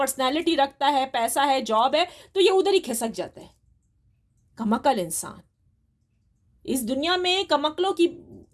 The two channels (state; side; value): identical; both; correlation 1.00